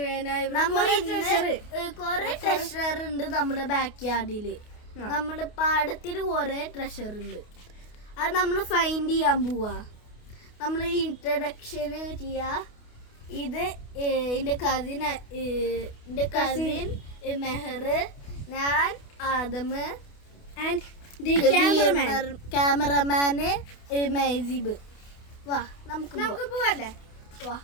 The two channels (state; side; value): late; right; 28 ms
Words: കൊറേ ട്രഷർ ഉണ്ട് നമ്മുടെ ബാക്ക് യാർഡില്. നമ്മുടെ പാടത്തിന് കൊറേ ട്രഷർ ഉണ്ട്. അത് നമ്മൾ ഫൈൻഡ് ചെയ്യാൻ പോവാ. നമ്മൾ ഇൻട്രഡക്ഷന് ചെയ്യാ. ഇത് എന്റെ കസിൻ മെഹർ, ഞാൻ ആദമ് ആൻഡ് ക്യാമറമാന് മൈസീബ്. വാ നമുക്ക് പോവല്ലേ? വാ.